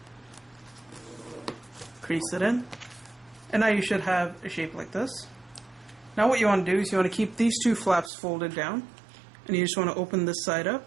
Crease it in. And now you should have a shape like this. Now what you want to do is you want to keep these 2 flaps folded down. And you just want to open this side up.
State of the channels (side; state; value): left; drops out; at 8.1 s